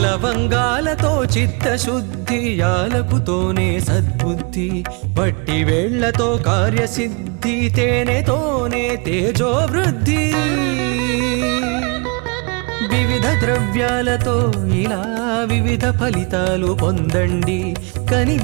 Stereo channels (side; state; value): left; quieter; 33.1 dB